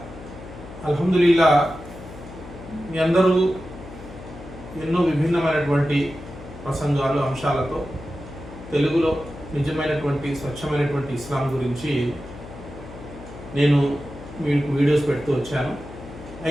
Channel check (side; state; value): left; noise; hum, 15 dB below the sound